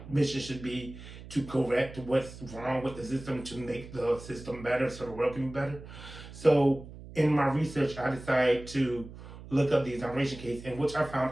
mission should be to correct what's wrong with the system to make the system better so the world can be better. So in my research, I decided to look up the exoneration case, in which I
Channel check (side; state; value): right; noise; hum, 15 dB below the sound